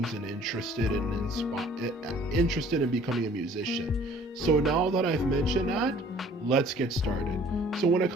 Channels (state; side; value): normal; both; correlation 0.54